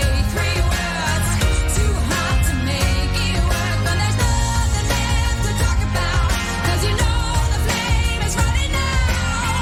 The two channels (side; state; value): both; identical; correlation 1.00